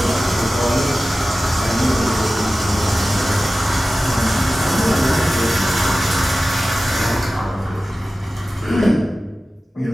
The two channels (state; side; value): normal; both; correlation 0.95